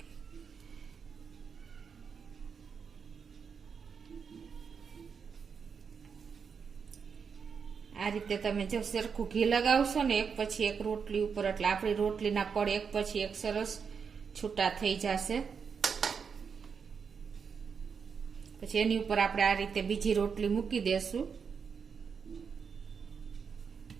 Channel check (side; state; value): left; quieter; 6.2 dB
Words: આ રીતે તમે જો સરખું ઘી લગાવશો ને એક પછી એક રોટલી ઉપર, એટલે આપણી રોટલીના પડ એક પછી એક સરસ છૂટા થઈ જશે. પછી એની ઉપર આપણે આ રીતે બીજી રોટલી મૂકી દેશું.